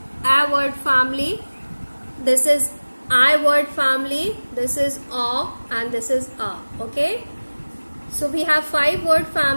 a word family, this is I word family, this is a, and this is a. Okay, so we have 5 word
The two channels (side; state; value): both; inverted; correlation -1.00